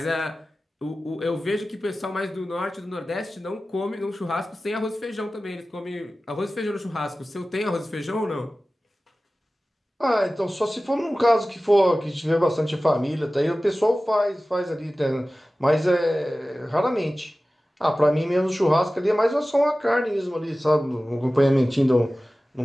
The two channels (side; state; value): both; normal; correlation 0.96